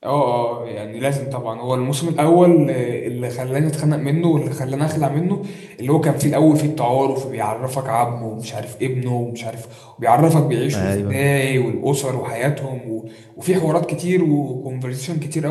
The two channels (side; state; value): both; identical; correlation 1.00